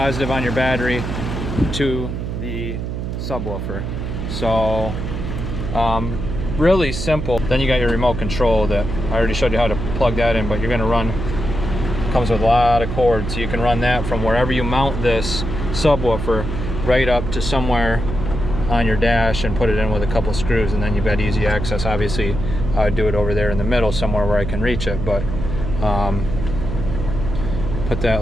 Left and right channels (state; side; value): noise; right; hum, 4 dB below the sound